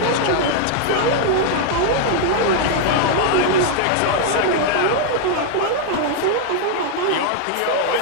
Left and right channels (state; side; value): different; both; correlation 0.00